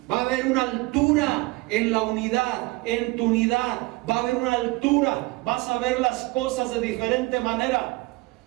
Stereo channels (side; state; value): left; quieter; 22.8 dB